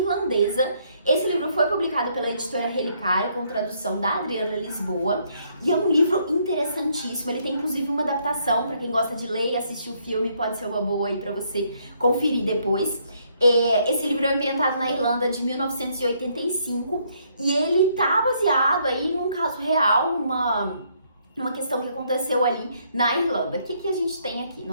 Esse livro foi publicado pela editora Relicária, com tradução da Adriana Lisboa, e é um livro interessantíssimo. Ele tem inclusive uma adaptação, para quem gosta de ler e assistir o filme, pode ser uma boa aí para você conferir depois. Esse livro é ambientado na Irlanda de 1985 e ele tá baseado aí num caso real, numa questão que aconteceu ali na Irlanda. O que a gente tem aqui?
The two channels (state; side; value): inverted; both; correlation -0.70